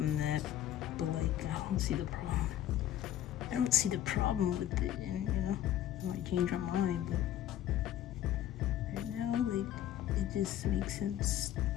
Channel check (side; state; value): right; quieter; 12.0 dB